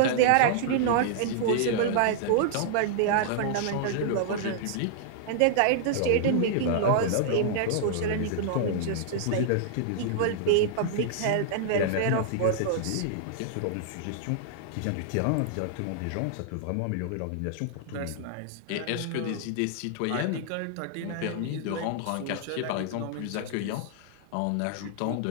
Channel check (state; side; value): different; both; correlation -0.01